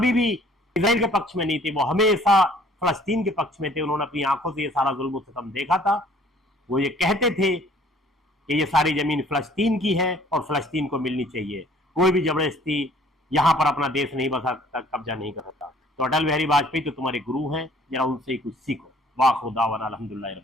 भी इसराइल के पक्ष में नहीं थे, वो हमेशा फलस्तीन के पक्ष में थे। उन्होंने अपनी आंखों से ये सारा जुल्म सितम देखा था। वो ये कहते थे कि ये सारी जमीन फलस्तीन की है और फलस्तीन को मिलनी चाहिए, कोई भी जबरदस्ती यहां पर अपना देश नहीं बसा सकता, कब्जा नहीं कर सकता। तो अटल बिहारी वाजपेयी तो तुम्हारे गुरु हैं, जरा उनसे ही कुछ सीखो। वाह खुदा वन अल्हम्दुलिल्लाह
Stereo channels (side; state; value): both; normal; correlation 0.56